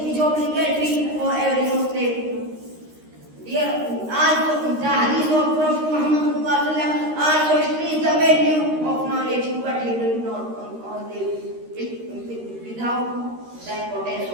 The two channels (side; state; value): left; late; 13 ms